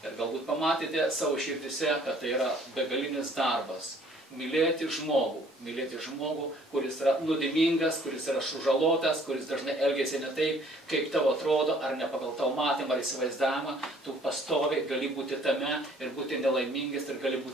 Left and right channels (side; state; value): both; normal; correlation 0.58